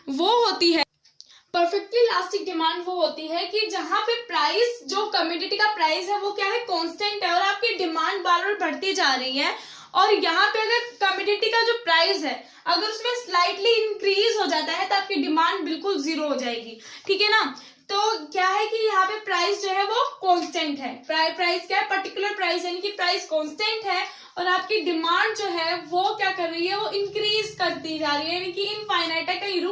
वो होती है, परफेक्टली इलास्टिक डिमांड वो होती है कि जहां पे प्राइस, जो कमोडिटी का प्राइस है वो क्या है, कांस्टेंट है और आपकी डिमांड बार बार बढ़ती जा रही है। और यहाँ पे अगर कमोडिटी का जो प्राइस है अगर उसमें स्लाइटली इंक्रीज हो जाता है तो आपकी डिमांड बिल्कुल जीरो हो जाएगी। ठीक है ना। तो क्या है कि यहाँ पे प्राइस जो है वो कांस्टेंट है। प्राइस क्या है, पर्टिकुलर प्राइस, यानी कि प्राइस कांस्टेंट है और आपकी डिमांड जो है वो क्या कर रही है, वो इंक्रीज करती जा रही है, यानी कि इनफाइनाइट है, कहीं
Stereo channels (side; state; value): both; identical; correlation 1.00